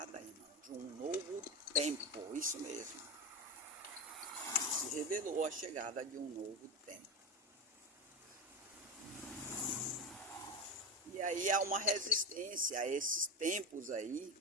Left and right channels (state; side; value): normal; both; correlation 0.19